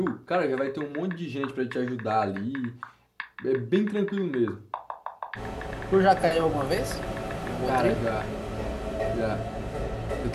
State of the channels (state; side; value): identical; both; correlation 1.00